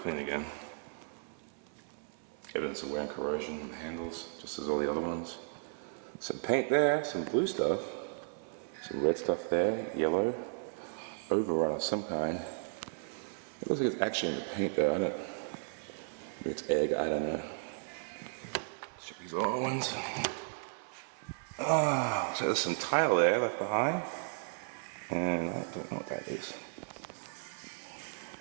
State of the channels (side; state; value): left; silent; 54 dB below the other